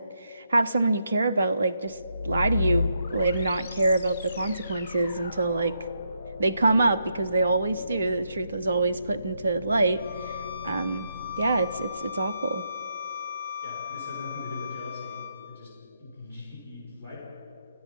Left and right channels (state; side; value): inverted; both; correlation -0.80